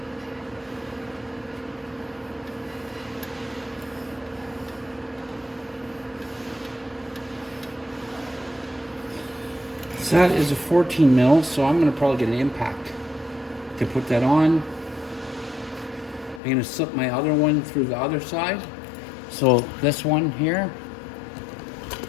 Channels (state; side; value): drops out; right; at 16.4 s